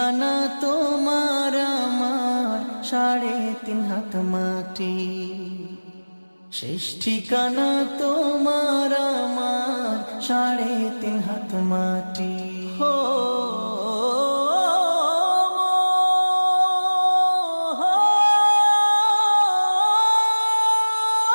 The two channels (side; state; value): both; inverted; correlation -1.00